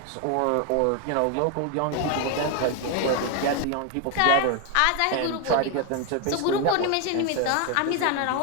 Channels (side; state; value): both; different; correlation 0.01